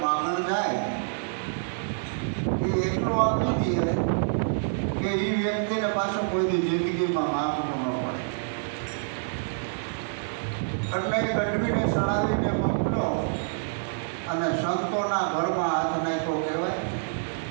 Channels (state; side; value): silent; left; digital silence